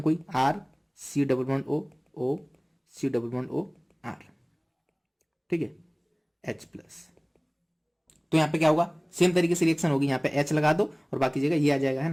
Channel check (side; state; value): both; identical; correlation 1.00